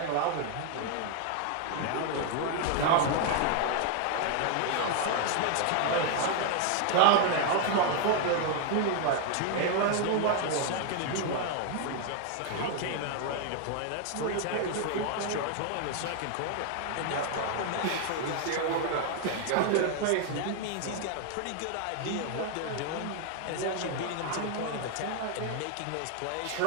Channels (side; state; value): both; different; correlation 0.00